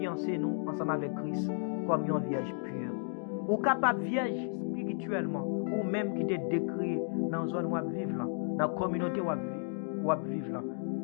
nous ensemble avec Christ comme une vierge pure. Ou capable vierge spirituellement, ou même qui te décrit dans la zone où vous vivez là, dans la communauté où vous vivez là.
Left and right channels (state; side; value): silent; right; 56 dB below the other